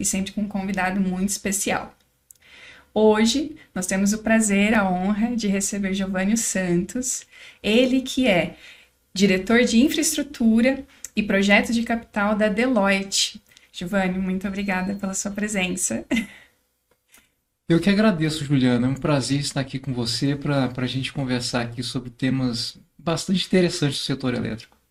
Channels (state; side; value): identical; both; correlation 1.00